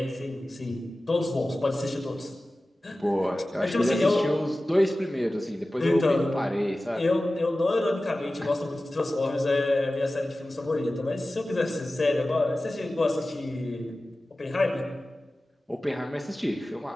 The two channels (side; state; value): both; normal; correlation 0.96